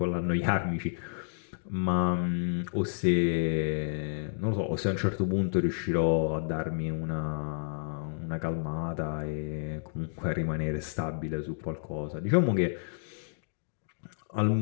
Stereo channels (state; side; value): silent; right; digital silence